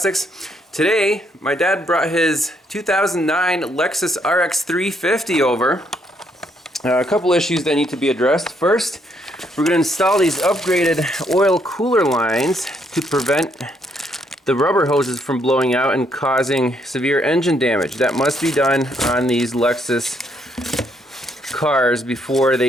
Today, my dad brought his 2009 Lexus RX350 over. A couple issues that need to be addressed. First, we're going to install these upgraded oil cooler lines to prevent the rubber hoses from blowing out and causing severe engine damage. That must be done on these Lexus cars before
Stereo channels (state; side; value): normal; both; correlation 0.72